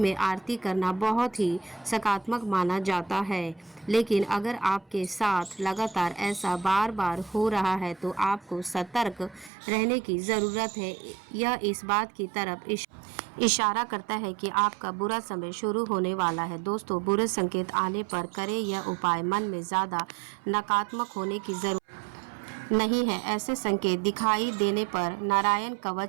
आरती करना बहुत ही सकारात्मक माना जाता है, लेकिन अगर आपके साथ लगातार ऐसा बार बार हो रहा है तो आपको सतर्क रहने की ज़रूरत है। यह इस बात की तरफ इशारा करता है कि आपका बुरा समय शुरू होने वाला है। दोस्तों, बुरे संकेत आने पर करें यह उपाय। मन में ज़्यादा नकारात्मक होने की ज़रूरत नहीं है। ऐसे संकेत दिखाई देने पर नारायण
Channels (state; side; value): drops out; left; at 9.5 s